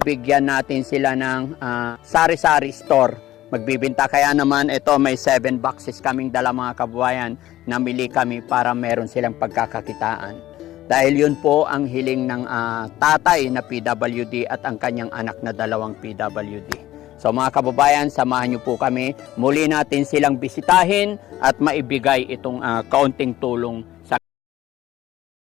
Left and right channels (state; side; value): quieter; right; 14.7 dB